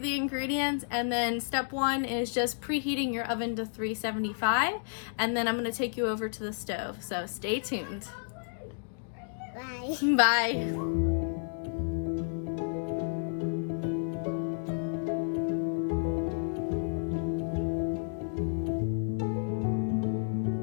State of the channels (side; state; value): right; silent; digital silence